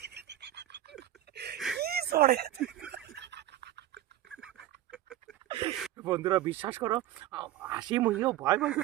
কি সরে। বন্ধুরা বিশ্বাস করো, হাসি মুহিও ভয় ভয়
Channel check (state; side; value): quieter; left; 13.3 dB